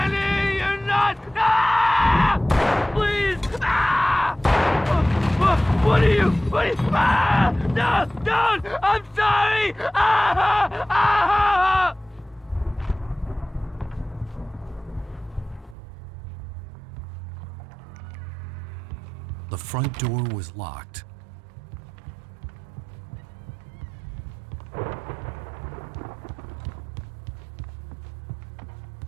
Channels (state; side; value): drops out; left; at 15.8 s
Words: you're not! Please! What are you? No! Don't! I'm sorry! The front door was locked.